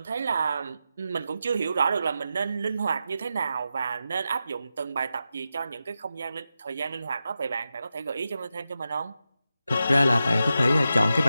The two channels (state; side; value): inverted; both; correlation -0.90